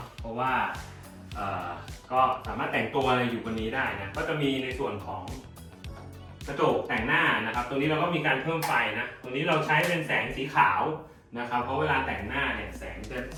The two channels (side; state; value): both; identical; correlation 1.00